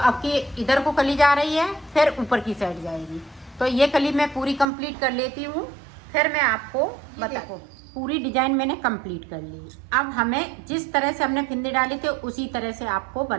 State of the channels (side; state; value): left; drops out; at 4.7 s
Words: की इधर को कली जा रही है, फिर ऊपर की साइड जाएगी। तो ये कली मैं पूरी कंप्लीट कर लेती हूँ, फिर मैं आपको बताऊँ। पूरी डिजाइन मैंने कंप्लीट कर ली। अब हमें जिस तरह से हमने फिंदे डाले थे उसी तरह से आपको